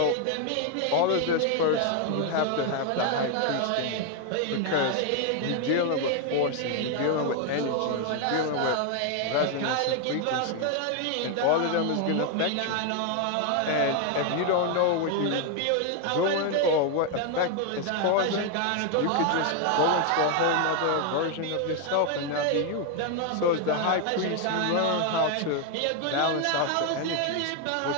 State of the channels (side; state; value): both; different; correlation 0.01